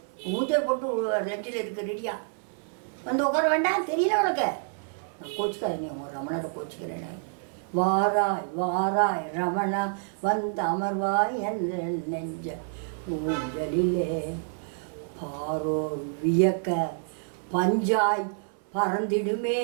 ஊஞ்சல் போட்டு நெஞ்சில் இருக்கு ரெடியா, வந்து உட்கார வேண்டாம், தெரியல உனக்கு. நான் கோச்சிக்காத, நீ உங்கள் ரமணரை கோச்சிக்கிறேனே. வாராய் வாராய் ரமணா வந்து அமர்வாய் எந்த நெஞ்ச ஊஞ்சலிலே. பாரோர் வியக்க பஞ்சாய் பறந்திடுமே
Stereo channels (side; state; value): left; silent; 57 dB below the other